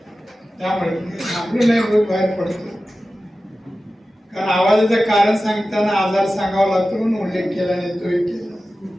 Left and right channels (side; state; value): both; normal; correlation 0.95